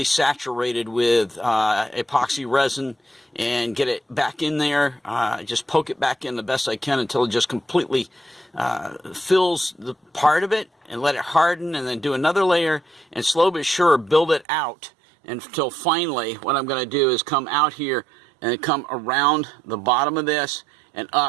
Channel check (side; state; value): left; drops out; at 14.5 s